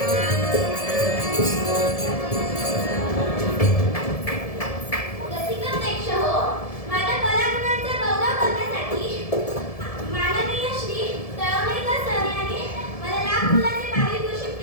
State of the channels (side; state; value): right; late; 1.7 ms